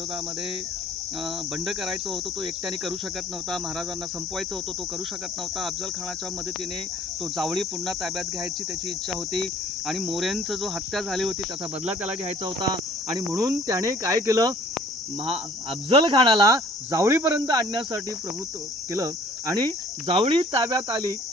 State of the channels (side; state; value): both; normal; correlation 0.54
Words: बंड करायचं होतं, तो एकट्याने करू शकत नव्हता. महाराजांना संपवायचं होतं, तो करू शकत नव्हता. अफजल खानाच्या मदतीने तो जावळी पुन्हा ताब्यात घ्यायची त्याची इच्छा होती. आणि मोऱ्यांचं जो हत्या झाली होती त्याचा बदला त्याला घ्यायचा होता. आणि म्हणून त्याने काय केलं, अफजल खानाला जावळीपर्यंत आणण्यासाठी प्रभुत्व केलं. आणि जावळी ताब्यात आली